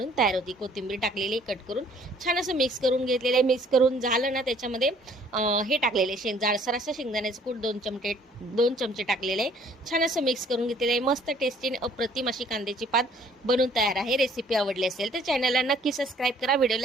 तयार होती। कोथिंबीर टाकलेली कट करून छान असं मिक्स करून घेतलेलं आहे। मिक्स करून झालं ना, त्याच्यामध्ये हे टाकलेले जाडसर असं शेंगदाण्याचं कूट 2 चमचे टाकलेले आहे। छान असं मिक्स करून घेतलेलं आहे। मस्त टेस्टी आणि अप्रतिम अशी कांद्याची पात बनून तयार आहे। रेसिपी आवडली असेल तर चॅनलला नक्की सबस्क्राईब करा,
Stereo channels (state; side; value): normal; both; correlation 0.58